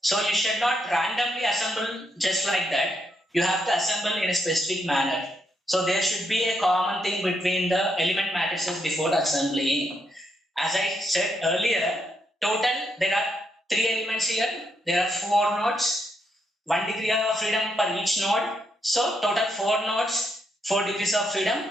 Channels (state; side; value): normal; both; correlation 0.78